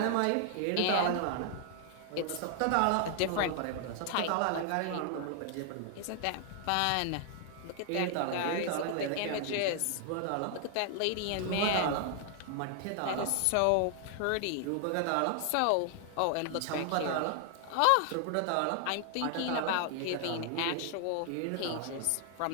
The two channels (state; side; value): different; both; correlation 0.00